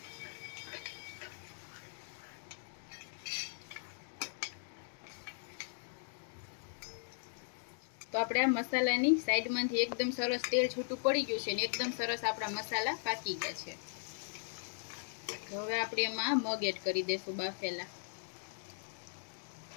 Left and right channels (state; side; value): silent; right; digital silence